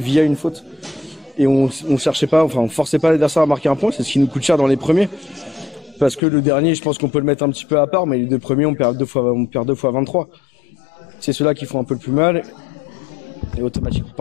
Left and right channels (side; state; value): right; drops out; at 6.2 s